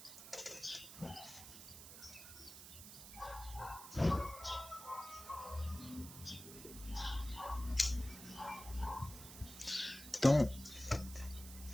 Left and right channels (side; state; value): right; noise; hiss, 13 dB below the sound